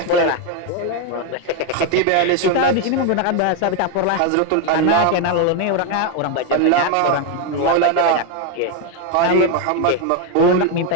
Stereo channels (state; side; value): different; both; correlation 0.01